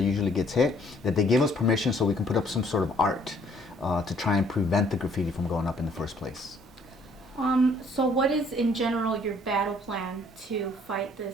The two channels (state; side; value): normal; both; correlation 0.61